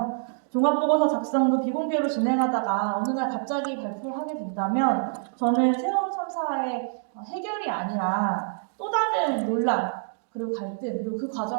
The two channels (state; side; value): silent; left; digital silence